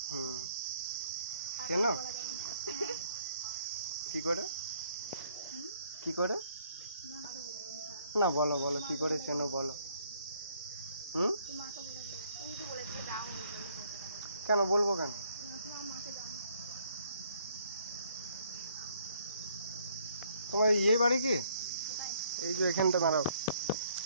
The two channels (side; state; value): both; inverted; correlation -0.65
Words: হুম, চেনো? কি করে কি করে? না বলো বলো, কি করে চেনো বলো। হুম, কেন বলবো কেন? তোমার ইয়ে বাড়ি কি? এই যে এখানটা দাঁড়াও,